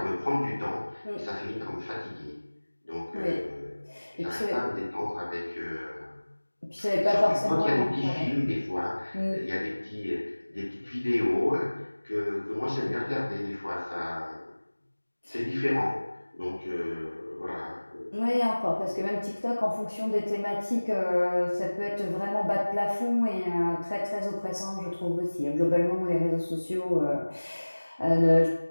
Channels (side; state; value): both; inverted; correlation -1.00